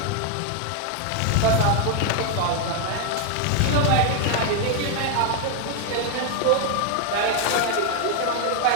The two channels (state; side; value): different; both; correlation 0.00